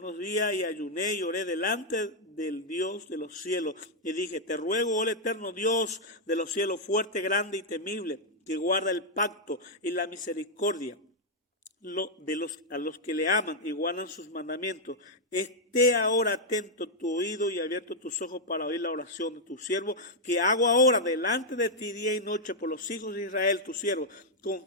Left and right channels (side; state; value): both; normal; correlation -0.03